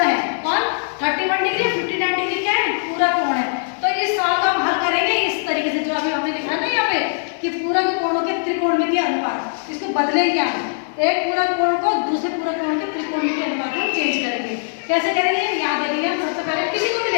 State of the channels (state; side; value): silent; right; digital silence